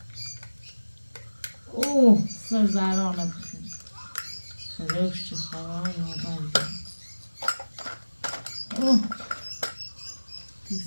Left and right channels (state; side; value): inverted; both; correlation -1.00